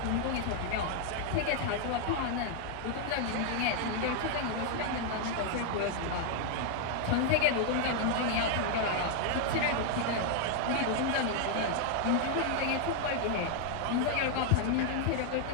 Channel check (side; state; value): both; different; correlation 0.00